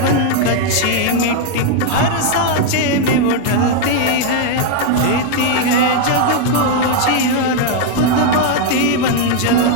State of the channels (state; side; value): different; both; correlation 0.00